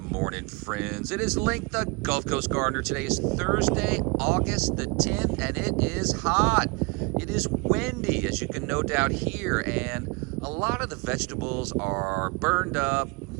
morning, friends. It is Link, the Gulf Coast Gardener. Today is Thursday, August the 10th, and it is hot. It is windy, as you can no doubt hear, and a lot of the vegetables are burned up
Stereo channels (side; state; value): left; quieter; 28.6 dB